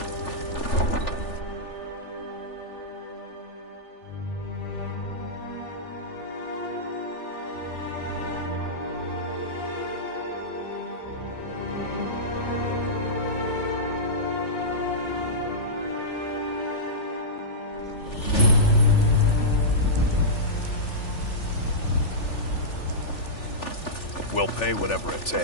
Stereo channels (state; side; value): late; right; 3.4 ms